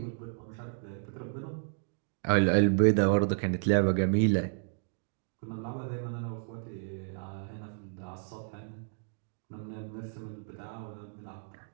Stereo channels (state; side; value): silent; left; digital silence